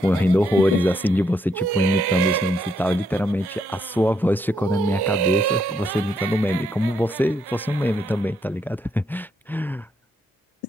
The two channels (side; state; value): both; normal; correlation 0.76